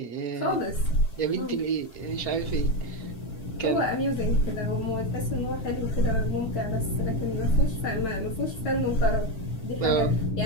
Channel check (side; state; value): right; late; 7.5 ms